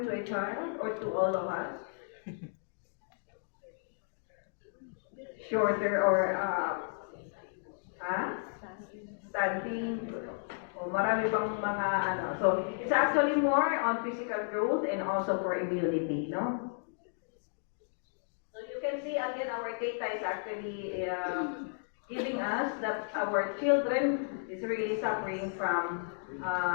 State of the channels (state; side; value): silent; right; digital silence